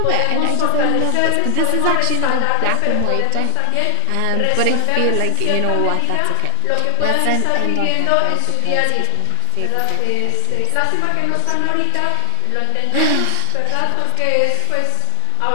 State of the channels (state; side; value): different; both; correlation 0.00